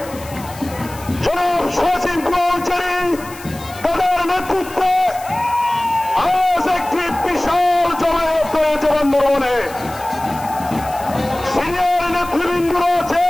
জনাব নেতৃত্বে আজ একটি বিশাল জমায়েত হয়েছে বন্ধুগণে। সিনিয়র নেতৃবৃন্দরা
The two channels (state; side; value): noise; left; hiss, 18 dB below the sound